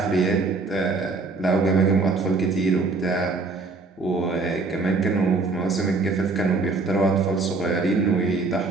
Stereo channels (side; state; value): left; quieter; 3.8 dB